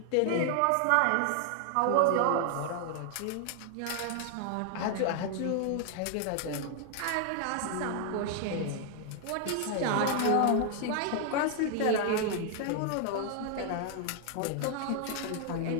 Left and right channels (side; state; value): both; different; correlation 0.00